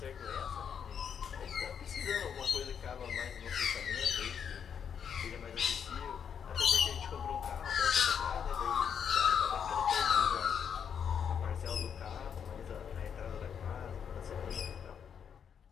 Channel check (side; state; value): right; quieter; 7.6 dB